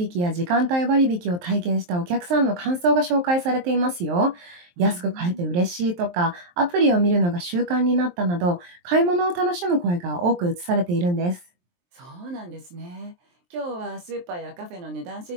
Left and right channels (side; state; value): left; late; 23 ms